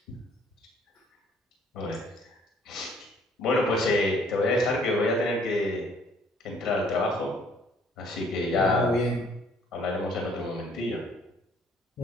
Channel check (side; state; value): both; normal; correlation 0.61